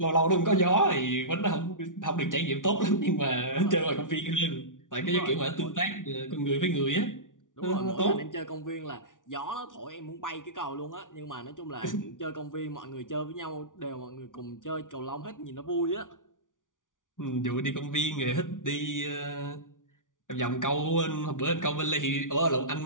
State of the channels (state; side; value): late; right; 0.88 ms